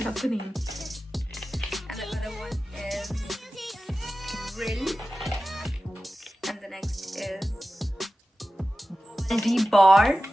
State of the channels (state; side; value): normal; both; correlation 0.94